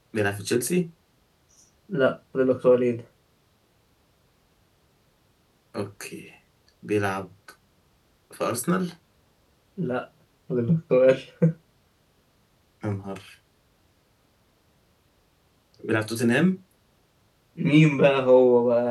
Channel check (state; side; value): identical; both; correlation 1.00